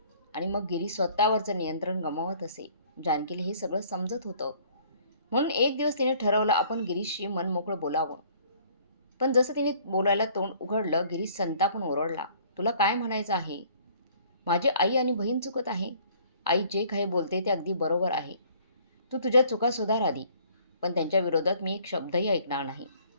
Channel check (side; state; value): both; inverted; correlation -0.57